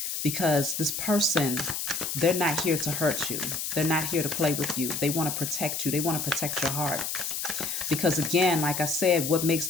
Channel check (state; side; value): noise; left; hiss, 3 dB below the sound